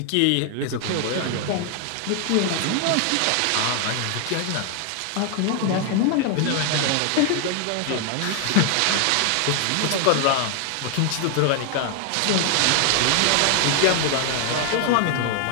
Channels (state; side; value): different; both; correlation 0.00